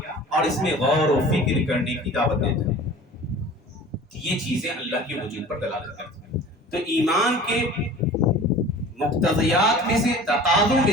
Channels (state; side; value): normal; both; correlation 0.42